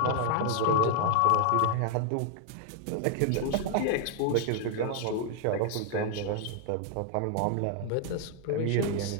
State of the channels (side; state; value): both; different; correlation 0.00